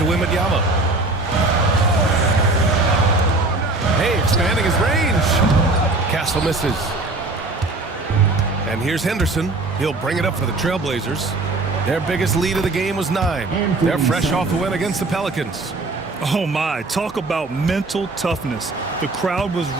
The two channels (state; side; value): quieter; left; 3.1 dB